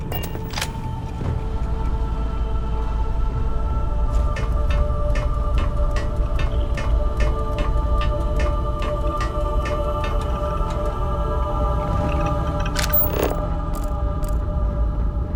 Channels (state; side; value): identical; both; correlation 1.00